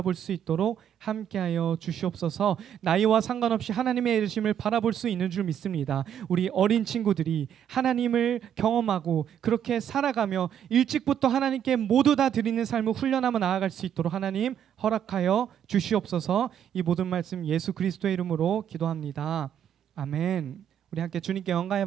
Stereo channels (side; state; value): left; quieter; 9.4 dB